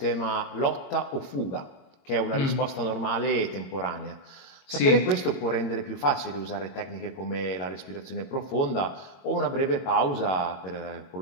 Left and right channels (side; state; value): right; late; 22 ms